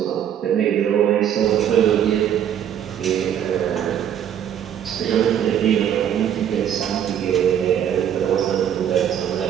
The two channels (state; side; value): quieter; left; 9.6 dB